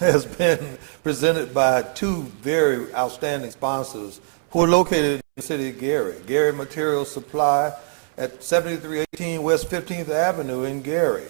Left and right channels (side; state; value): left; silent; 64 dB below the other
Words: been presented by two very outstanding sponsors who are located in the city of Gary. Gary Material Supply at 7318 West 15th Avenue in Gary,